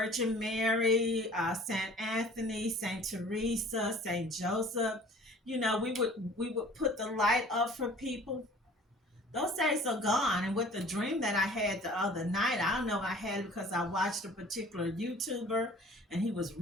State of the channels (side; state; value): both; normal; correlation 0.48